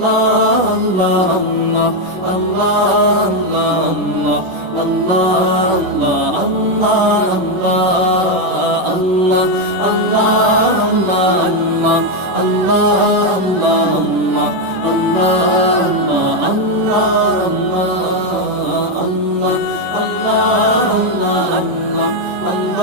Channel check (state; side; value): late; left; 11 ms